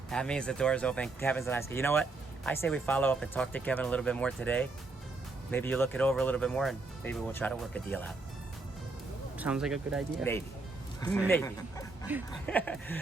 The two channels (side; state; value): left; quieter; 3.5 dB